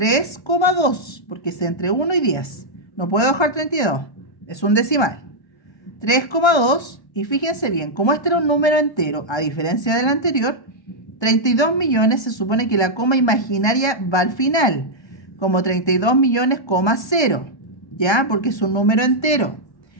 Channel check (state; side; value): late; right; 1.3 ms